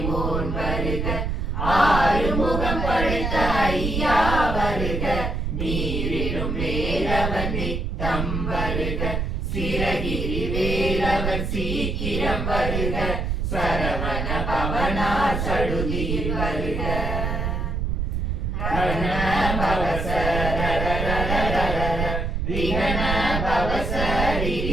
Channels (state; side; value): noise; right; rumble, 1 dB below the sound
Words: வருக ஆறுமுகம் படைத்த ஐயா வருக நீரிடும் வேலவன் நித்தம் வருக சிரகிரி வேலவன் சீக்கிரம் வருக சரவண பவனா சடுதியில் வருக ரண பவச ரிகண பவச